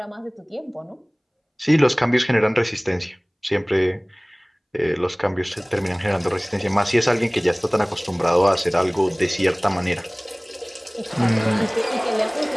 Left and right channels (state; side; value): identical; both; correlation 1.00